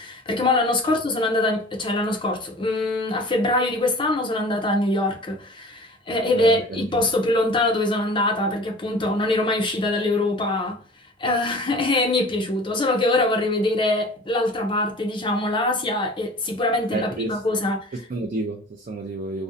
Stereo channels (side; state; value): both; normal; correlation 0.43